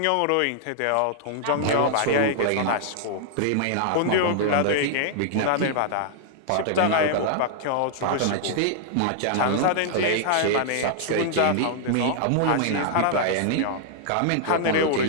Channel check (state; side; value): different; both; correlation -0.01